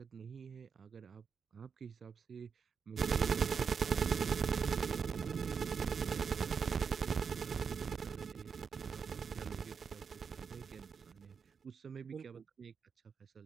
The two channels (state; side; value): quieter; left; 6.2 dB